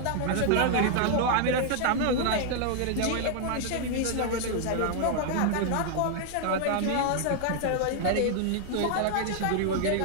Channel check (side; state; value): both; different; correlation 0.00